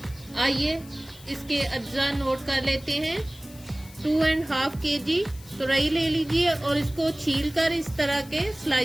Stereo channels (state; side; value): noise; left; hiss, 21 dB below the sound